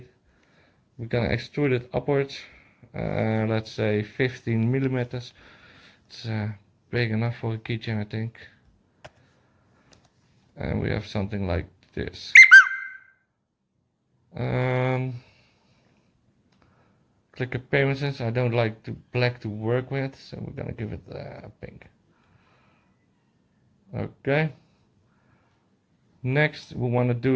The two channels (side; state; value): both; identical; correlation 1.00